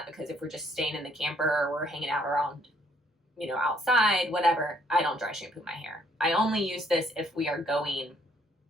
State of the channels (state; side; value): normal; both; correlation 0.66